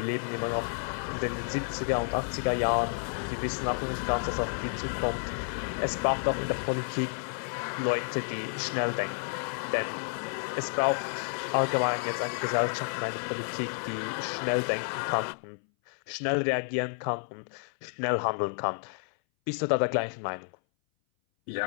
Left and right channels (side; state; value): right; silent; 58 dB below the other